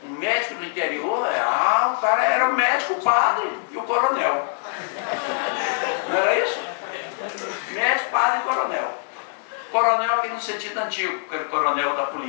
Um médico do interior, o cara era o médico, o padre e o coronel. Não era isso? Médico, padre e coronel. Coronel aqui no sentido antigo, aquele coronel da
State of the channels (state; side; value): silent; right; digital silence